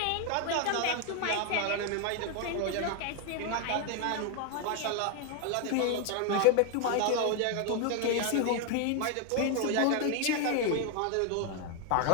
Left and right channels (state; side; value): different; both; correlation 0.01